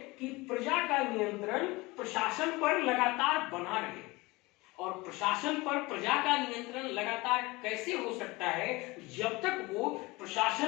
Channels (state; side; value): quieter; right; 22.7 dB